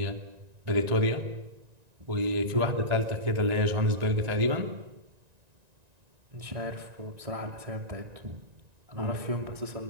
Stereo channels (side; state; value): left; late; 1.9 ms